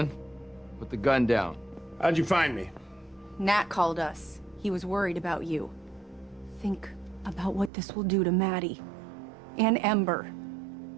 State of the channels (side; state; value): left; drops out; at 7.7 s